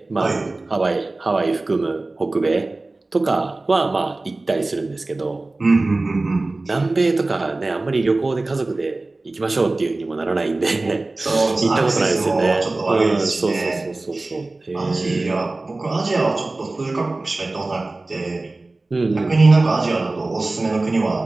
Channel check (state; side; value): quieter; left; 3.1 dB